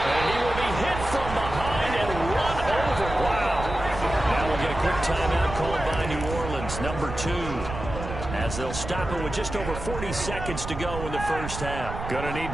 And he will be hit from behind and run over. Wow. Now we'll get a quick timeout called by New Orleans, number 2. As they'll stop it with just over 40 seconds to go in the first half. Gonna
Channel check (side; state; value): right; noise; rumble, 8 dB below the sound